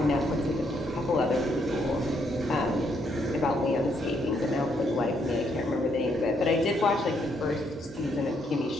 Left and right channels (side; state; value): both; normal; correlation 0.73